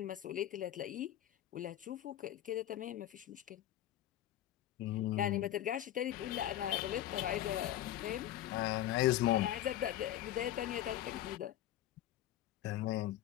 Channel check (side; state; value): right; quieter; 12.8 dB